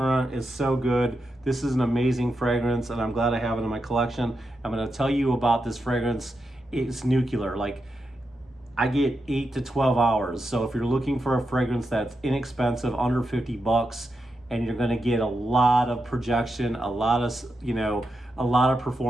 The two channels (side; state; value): both; normal; correlation 0.87